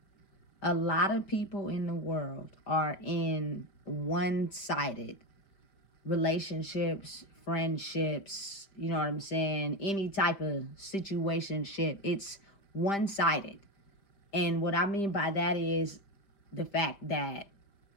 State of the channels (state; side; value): late; right; 5.0 ms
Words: a lot of people in the world are in one-sided relationships, friendships, you know what I'm saying? Any type of situationship. It's one-sided. And what I mean by that is the fact that